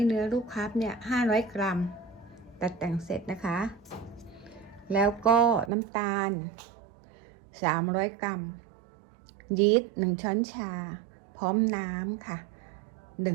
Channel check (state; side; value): drops out; left; at 5.7 s